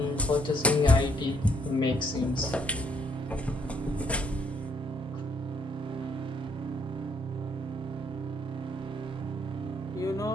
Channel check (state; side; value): normal; both; correlation 0.69